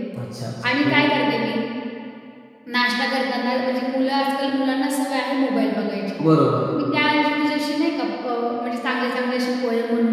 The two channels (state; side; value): identical; both; correlation 1.00